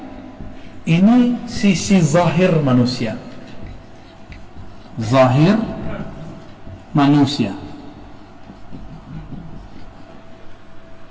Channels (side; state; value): both; identical; correlation 1.00